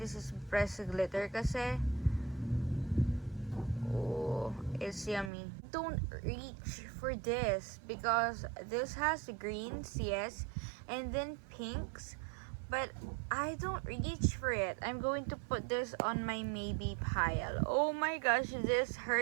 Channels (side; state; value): left; drops out; at 5.3 s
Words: is pressed glitter kasi. Oh, it's yummy. Don't reach for this because this has greens, yes, and then pinks, but I don't reach for it. I'm going to put this on my maybe pile. Oh my gosh, this